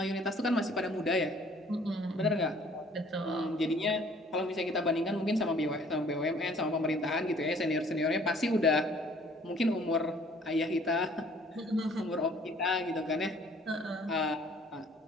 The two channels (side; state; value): both; normal; correlation 0.57